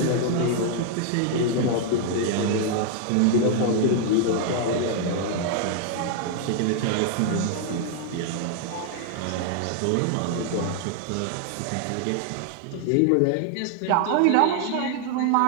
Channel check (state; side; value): different; both; correlation 0.00